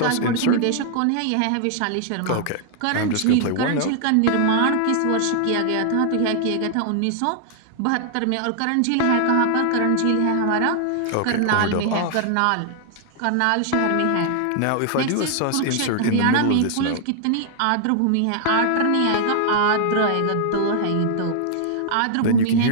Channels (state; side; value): different; both; correlation 0.00